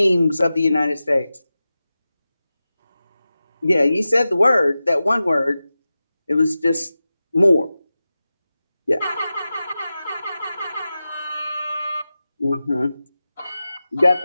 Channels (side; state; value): both; inverted; correlation -0.94